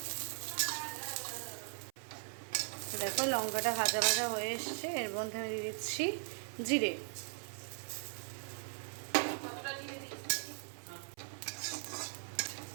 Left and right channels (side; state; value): left; silent; 52 dB below the other